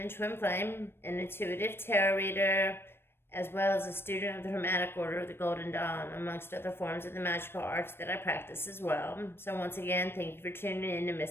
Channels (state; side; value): late; right; 0.11 ms